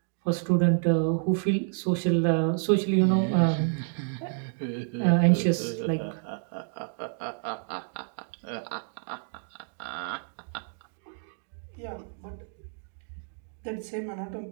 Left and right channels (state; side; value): silent; left; digital silence